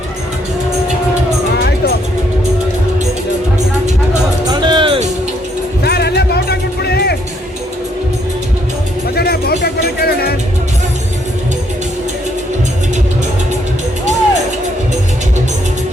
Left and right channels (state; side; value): normal; both; correlation 0.70